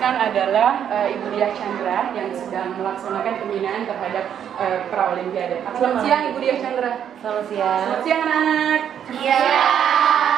adalah Ibu Diah Chandra yang sedang melaksanakan pembinaan terhadap pra-olimpiade. Selamat siang Ibu Diah Chandra. Selamat siang. Selamat siang anak-anak. Iya.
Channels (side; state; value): left; quieter; 9.1 dB